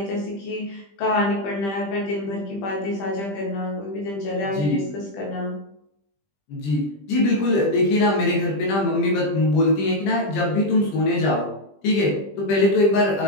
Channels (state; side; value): late; right; 20 ms